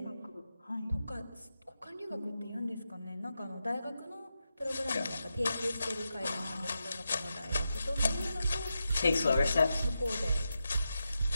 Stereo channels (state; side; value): inverted; both; correlation -0.88